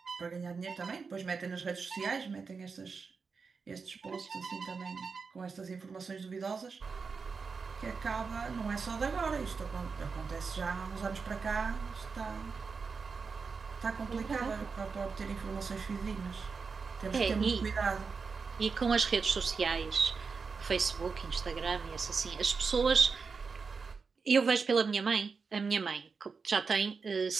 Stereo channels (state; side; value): quieter; left; 5.0 dB